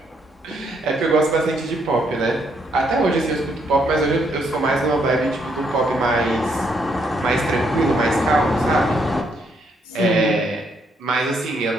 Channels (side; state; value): both; normal; correlation 0.73